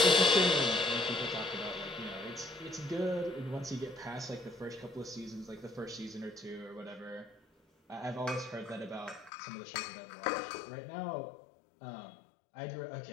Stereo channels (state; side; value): drops out; right; at 9.3 s